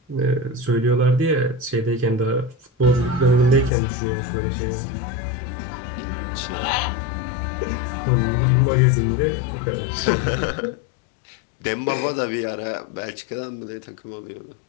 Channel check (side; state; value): right; drops out; at 3.7 s